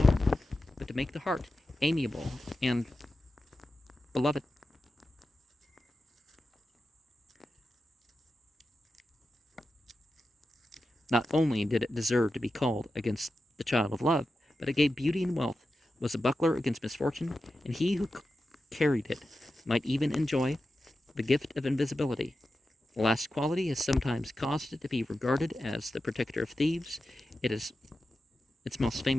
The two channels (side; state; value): both; normal; correlation 0.92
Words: but to make the heart amiable and beloved. Not only did it deserve to be called against the child of love, but it gave beauty and wealth, was a buckler against misfortune, and he who carried it might even enjoy the gift of invisibility. The last quality has sometimes caused it to be regarded as the protector of thieves. Its most